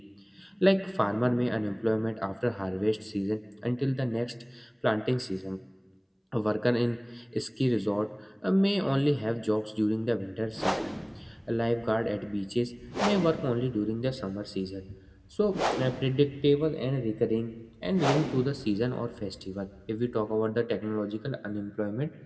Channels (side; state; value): both; identical; correlation 1.00